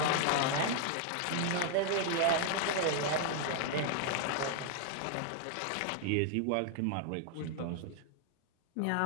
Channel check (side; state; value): both; different; correlation 0.00